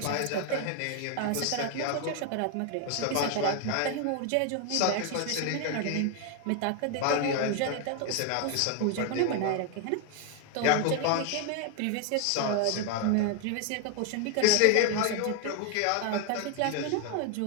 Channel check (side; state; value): both; different; correlation 0.01